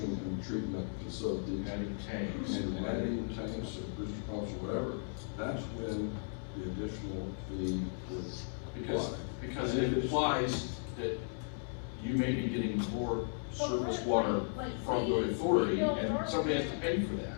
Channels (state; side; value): silent; right; digital silence